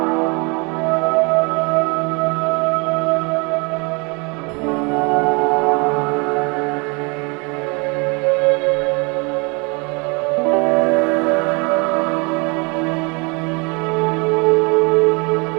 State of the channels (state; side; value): quieter; left; 30.4 dB